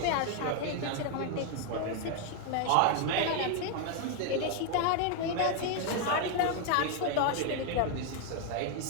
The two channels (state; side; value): different; both; correlation 0.01